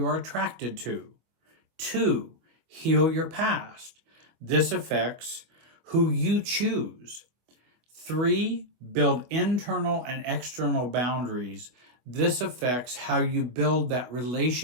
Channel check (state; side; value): late; left; 24 ms